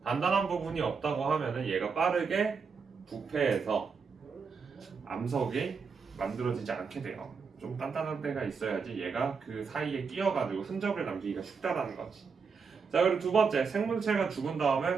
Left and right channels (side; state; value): left; quieter; 5.5 dB